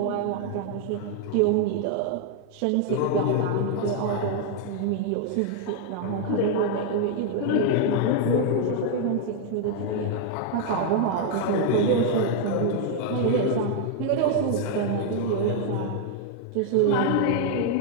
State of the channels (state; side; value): different; both; correlation 0.00